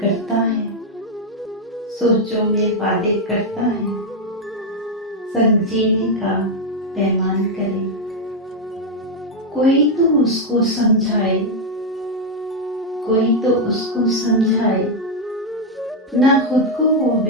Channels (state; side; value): normal; both; correlation 0.01